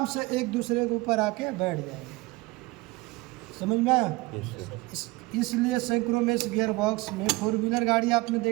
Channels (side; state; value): left; quieter; 22.3 dB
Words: से एक दूसरे के ऊपर आके बैठ जाएगा। समझ में आया? इसलिए सिंक्रोमेस गियर बॉक्स में, 4 व्हीलर गाड़ी आपने